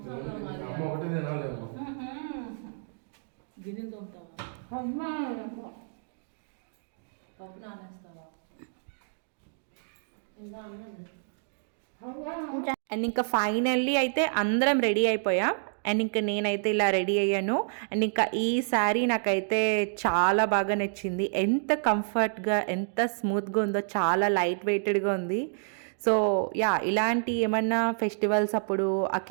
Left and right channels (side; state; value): left; silent; digital silence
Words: గిన్నెలు తోముతావా? పప్పు నానేస్తావా? ఇంకా అన్నది. అండ్ ఇంకా ఫైనల్లీ అయితే అందరం రెడీ అయిపోయాం. అండ్ ఇంకా నేనైతే ఇలా రెడీ అయ్యాను. అండ్ ఇంకా ఈ శారీ నాకైతే చాలా బాగా నచ్చింది. ఎంత కంఫర్ట్గా ఎంత స్మూత్గా ఉందో, చాలా లైట్ వెయిటెడ్గా ఉంది. సో యా, ఇలాంటి ఏమన్నా ఫెస్టివల్స్ అప్పుడు,